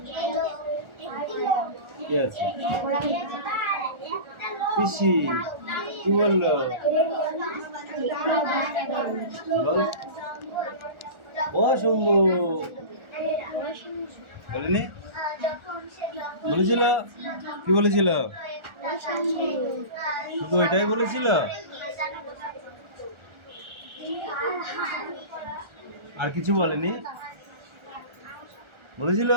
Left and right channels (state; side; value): late; left; 1.4 ms